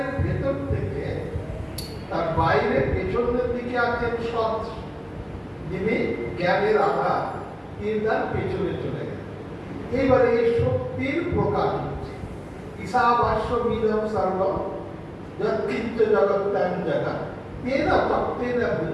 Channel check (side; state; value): both; identical; correlation 1.00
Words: ভেতর থেকে তার বাইরে পেছনের দিকে আছেন সৎ, যিনি জ্ঞানের আধার, তিনি তার পেছনে চলে গেলেন। এইবারে এই শক্তির প্রকাশ হচ্ছে। ঈশাবাস্য মিদম সর্বম যৎকিঞ্চ জগত্যাং জগৎ তেন তত্ত্বেন